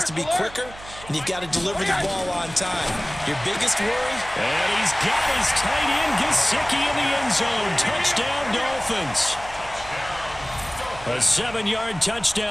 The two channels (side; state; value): right; noise; hum, 17 dB below the sound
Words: to be quicker, and you've got to deliver the ball on time. Your biggest worry? And he's got his tight end, Gesicki, in the end zone. Touchdown, Dolphins. A 7-yard